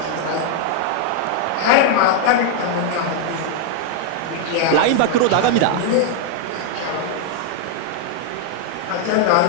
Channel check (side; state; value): both; different; correlation 0.00